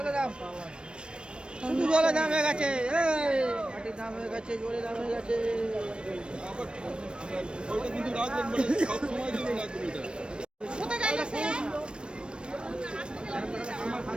জোরে দাম হয়ে গেছে। এই দাম হয়ে গেছে, জোরে দাম হয়ে গেছে। ওইটা কিন্তু রাখবেন, মানে সব সময় কিন্তু রাখবেন এটা।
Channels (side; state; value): left; late; 0.055 ms